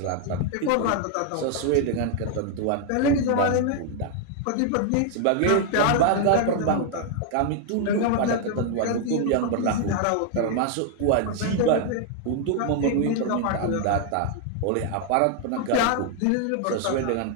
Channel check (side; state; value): both; different; correlation 0.00